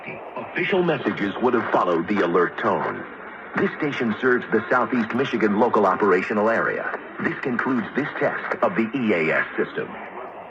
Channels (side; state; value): both; identical; correlation 1.00